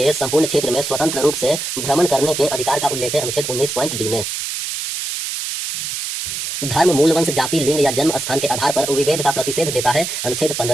संपूर्ण क्षेत्र में स्वतंत्र रूप से भ्रमण करने के अधिकार का उल्लेख है अनुच्छेद 19.d में। धर्म, मूल वंश, जाति, लिंग या जन्म स्थान के आधार पर विभेद का प्रतिषेध देता है अनुच्छेद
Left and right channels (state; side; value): noise; right; hiss, 4 dB below the sound